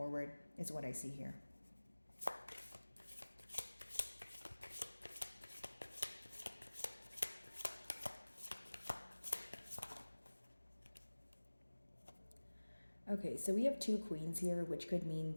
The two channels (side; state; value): both; inverted; correlation -1.00